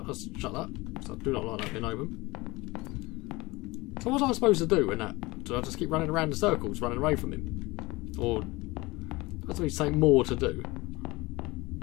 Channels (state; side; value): quieter; right; 22.3 dB